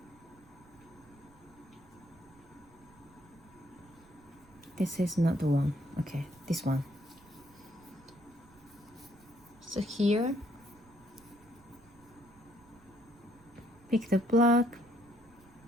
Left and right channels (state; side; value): noise; right; rumble, 26 dB below the sound